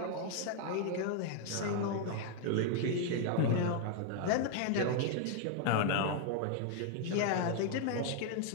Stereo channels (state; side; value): different; both; correlation 0.00